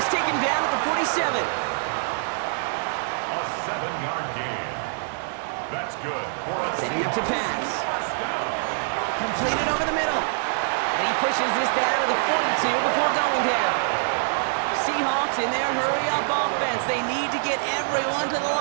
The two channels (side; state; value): left; silent; digital silence